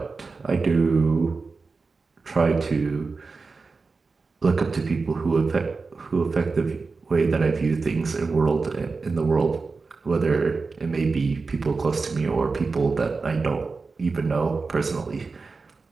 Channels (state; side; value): quieter; left; 4.3 dB